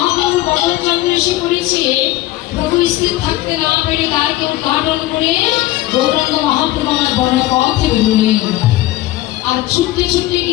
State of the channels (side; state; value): right; quieter; 16.5 dB